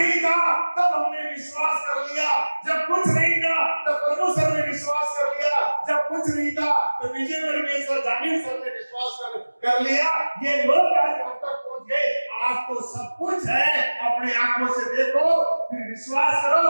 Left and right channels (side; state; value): both; inverted; correlation -1.00